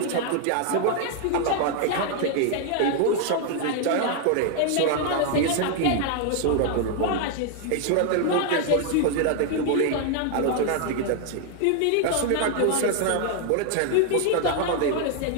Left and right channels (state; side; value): different; both; correlation 0.00